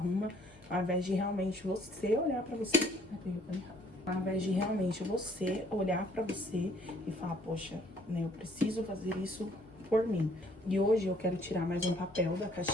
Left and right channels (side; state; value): left; noise; hum, 26 dB below the sound